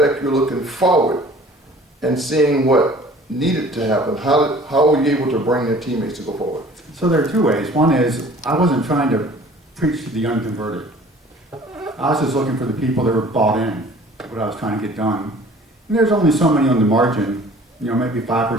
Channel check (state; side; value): normal; both; correlation 0.49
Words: you're looking forward and seeing what needed to happen. How were you able to bring your teammates to go forward? So there are two ways. One is I wasn't trying to preach to the unconverted. I was just looking for the people that were bought in, what I was trying to get done. And there's only so many on the margin, you know, maybe 5% or